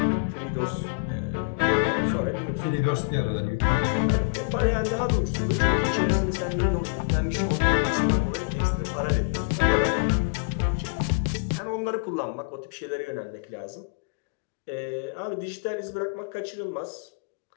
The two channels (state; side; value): quieter; right; 35.0 dB